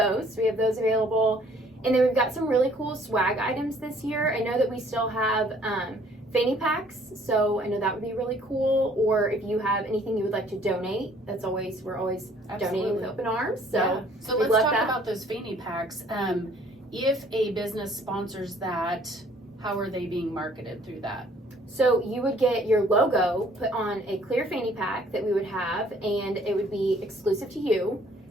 We have those available. And then we've got some really cool swag items this year. I know that we still have fanny packs, so I know that would be really cool. Or if you have anything you would like to donate, we're always donating with open arms. So, yeah. So we let's love talk that. about those fanny packs. If a business sponsors that, how are they being marketed through that? So you would get your logo put on a clear fanny pack that we would have, and it would be exclusive to you,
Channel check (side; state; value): both; normal; correlation 0.59